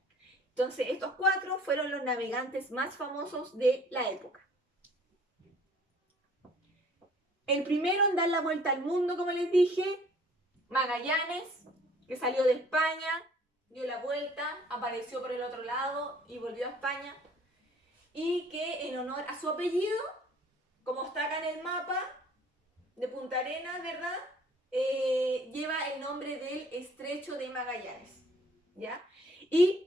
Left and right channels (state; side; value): normal; both; correlation 0.55